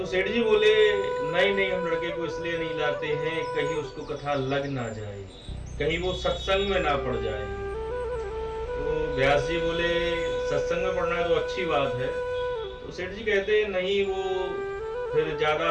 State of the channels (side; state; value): both; identical; correlation 1.00